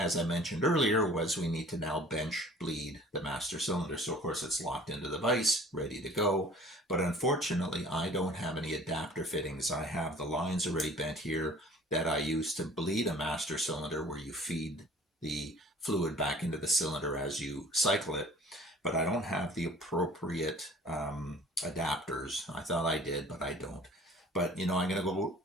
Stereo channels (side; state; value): both; normal; correlation 0.49